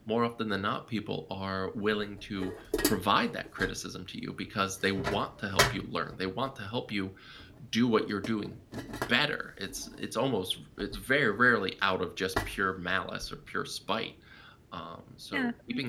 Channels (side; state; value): both; identical; correlation 1.00